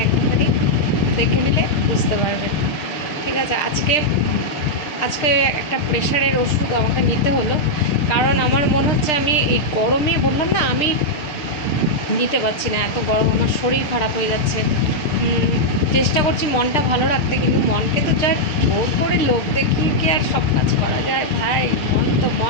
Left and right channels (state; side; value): late; right; 6.6 ms